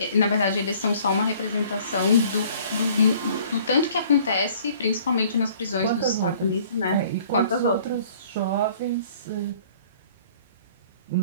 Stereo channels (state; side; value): inverted; both; correlation -0.55